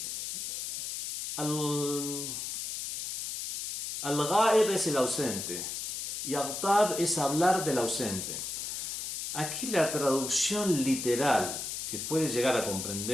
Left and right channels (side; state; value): left; noise; hiss, 5 dB below the sound